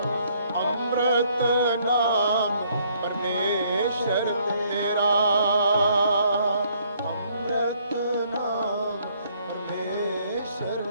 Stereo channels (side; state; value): both; inverted; correlation -0.65